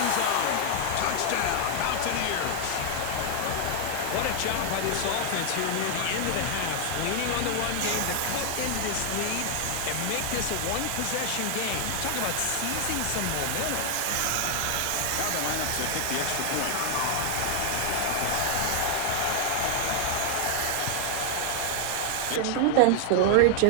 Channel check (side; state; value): both; different; correlation 0.00